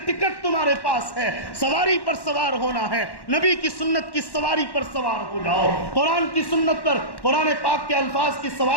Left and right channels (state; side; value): late; right; 1.1 ms